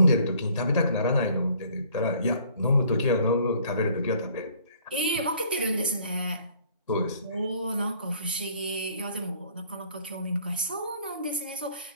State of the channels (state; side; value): inverted; both; correlation -0.58